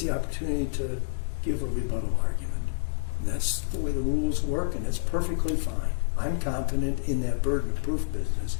the opportunity to give a rebuttal argument. And that's the way the rules work, and it's perfectly fine. I'm confident in that burden of proof business,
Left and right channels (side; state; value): right; silent; 59 dB below the other